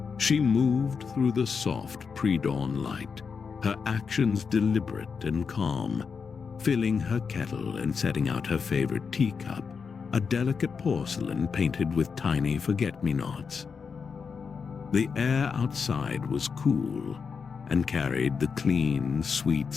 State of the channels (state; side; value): quieter; right; 5.7 dB